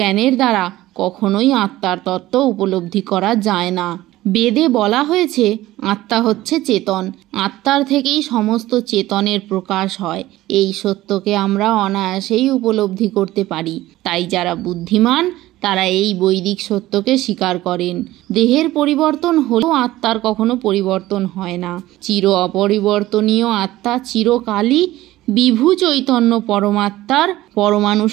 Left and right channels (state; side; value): quieter; left; 16.3 dB